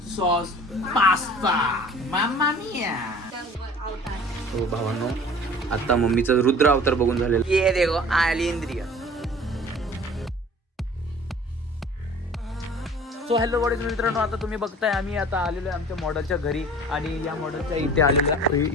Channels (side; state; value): both; normal; correlation 0.45